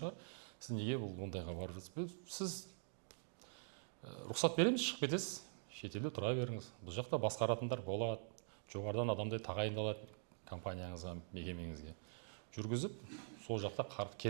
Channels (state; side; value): silent; left; digital silence